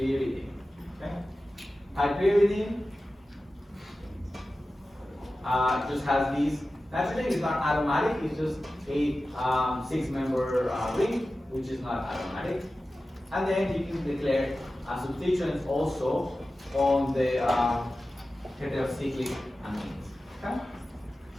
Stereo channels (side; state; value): both; normal; correlation 0.95